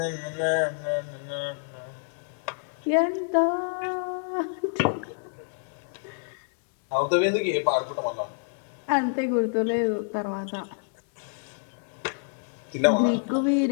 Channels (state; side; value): silent; right; digital silence